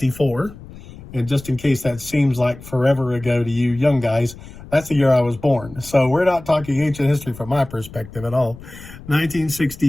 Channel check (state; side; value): noise; left; rumble, 17 dB below the sound